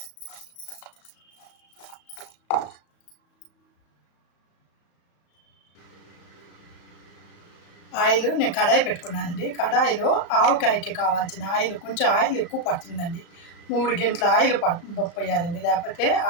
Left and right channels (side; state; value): right; late; 34 ms